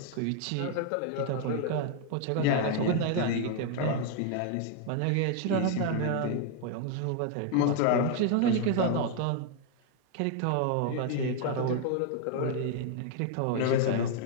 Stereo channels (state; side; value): different; both; correlation 0.00